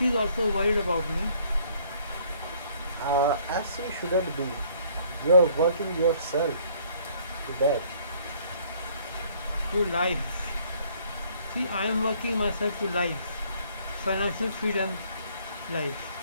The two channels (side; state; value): both; inverted; correlation -0.61